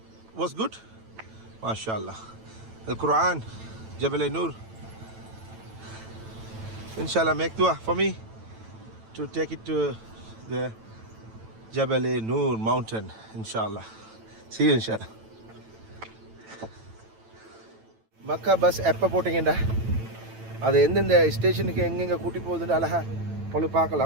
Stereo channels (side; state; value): left; late; 9.0 ms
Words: was good? MashaAllah. Al-Quran, Jabal Noor. Inshallah, make dua for me to take it to the Jabal Noor mountain. Inshallah. See you inshallah. Makkah bus எப்போ போட்டிங்கடா, அது எந்தெந்த ஸ்டேஷனுக்கு எங்கெங்கே கூட்டி போகுதுன்னு அழகா உங்களுக்கு